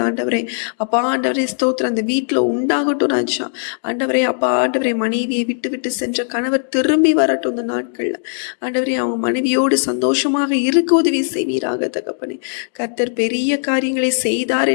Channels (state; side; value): silent; right; 67 dB below the other